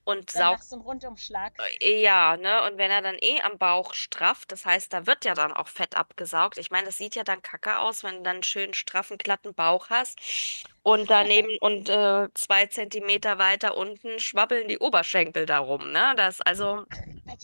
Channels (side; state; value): both; inverted; correlation -1.00